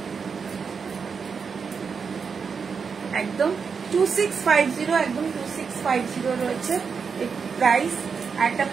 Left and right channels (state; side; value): quieter; left; 5.8 dB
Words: একদম 2650, একদম 2650 রয়েছে প্রাইস। একটা